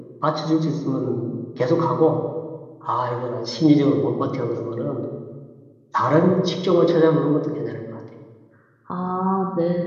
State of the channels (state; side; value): identical; both; correlation 1.00